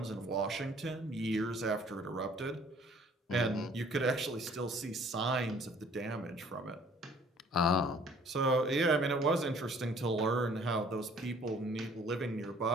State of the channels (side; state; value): both; normal; correlation 0.56